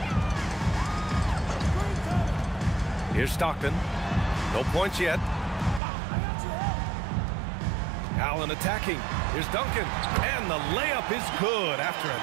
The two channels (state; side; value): drops out; left; at 5.8 s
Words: Here's Stockton. No points yet. Allen attacking. Here's Duncan. And the layup is good after a